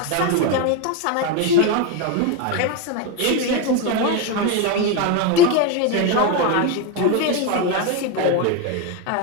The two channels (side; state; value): both; different; correlation 0.03